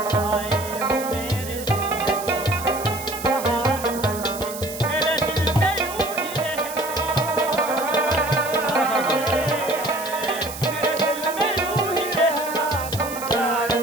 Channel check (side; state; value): right; noise; hiss, 11 dB below the sound